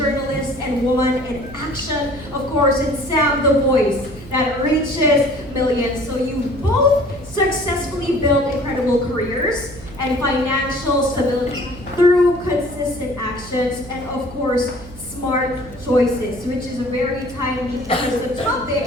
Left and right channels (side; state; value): right; noise; hum, 17 dB below the sound